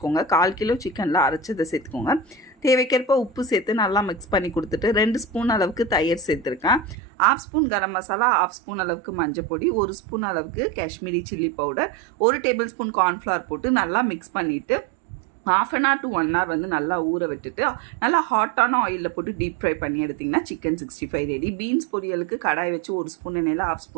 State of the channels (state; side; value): drops out; left; at 7.0 s